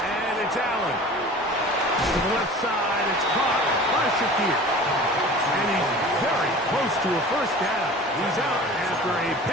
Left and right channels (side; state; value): both; normal; correlation 0.41